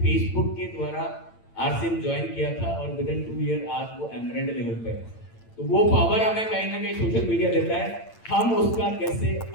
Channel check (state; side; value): late; right; 8.9 ms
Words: के द्वारा आरसीएम ज्वाइन किया था और विद इन 2 ईयर आज वो एमरेल्ड लेवल पे है। तो वो पावर हमें कहीं ना कहीं सोशल मीडिया देता है, हम उसका कैसे